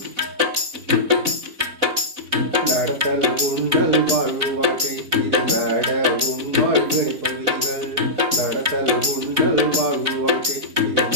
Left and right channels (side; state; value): left; late; 4.0 ms